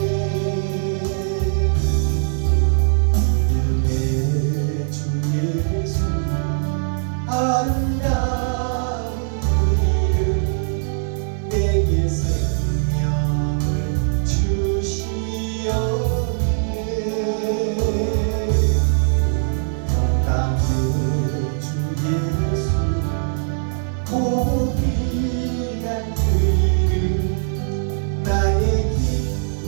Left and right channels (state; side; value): silent; left; digital silence